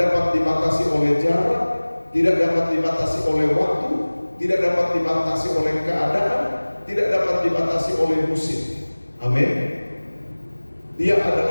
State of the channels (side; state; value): both; inverted; correlation -1.00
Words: dibatasi oleh jarak, tidak dapat dibatasi oleh waktu, tidak dapat dibatasi oleh keadaan, tidak dapat dibatasi oleh musim. Amin. Dia